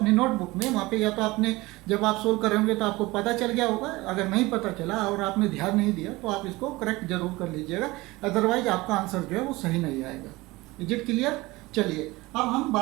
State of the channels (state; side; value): quieter; left; 21.1 dB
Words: नोटबुक में। वहाँ पे या तो आपने जब आप सोल्व कर रहे होंगे तो आपको पता चल गया होगा, अगर नहीं पता चला और आपने ध्यान नहीं दिया तो आप इसको करेक्ट जरूर कर लीजिएगा, अदरवाइज आपका आंसर जो है वो सही नहीं आएगा। Is it clear? चलिए अब हम